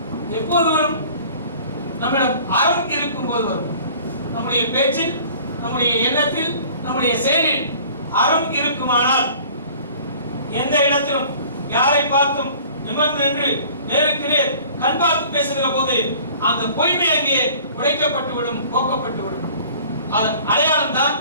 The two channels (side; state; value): both; inverted; correlation -0.48